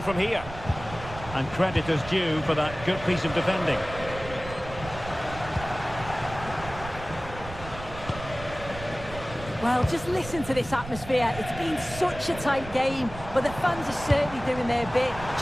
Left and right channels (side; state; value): right; noise; rumble, 13 dB below the sound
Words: here? And credit is due for that good piece of defending. Well, just listen to this atmosphere. It's been such a tight game, but the fans are certainly doing their bit,